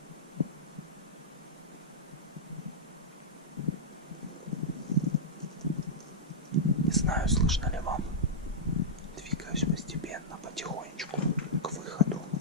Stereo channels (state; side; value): normal; both; correlation -0.10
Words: Не знаю, слышно ли вам. Двигаюсь постепенно, потихонечку к выходу.